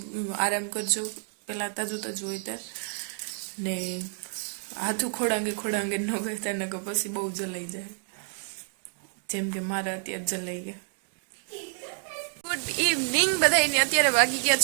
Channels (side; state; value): left; silent; 59 dB below the other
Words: આરામ કરજો પહેલાં તાજું હોય ત્યાં ને હાથું ખોડાંગે ન કરતા ને પછી બહુ જલાઈ જાય, જેમ કે મારા અત્યારે જલાઈ ગયા. ગુડ ઇવનિંગ બધાને. અત્યારે વાગી ગયા